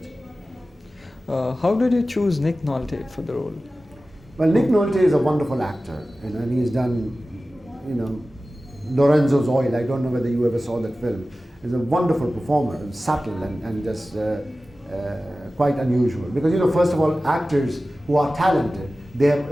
How did you choose Nick Nolte for the role? Well, Nick Nolte is a wonderful actor, you know, and he's done, you know, Lorenzo's Oil. I don't know whether you ever saw that film. He's a wonderful performer, subtle and just quite unusual. Because, you know, first of all, actors who are talented, they have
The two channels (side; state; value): both; normal; correlation 0.96